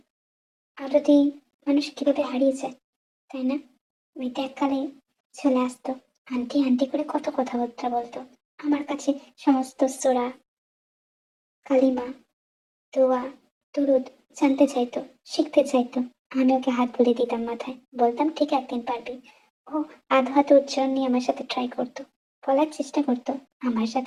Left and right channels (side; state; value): both; identical; correlation 1.00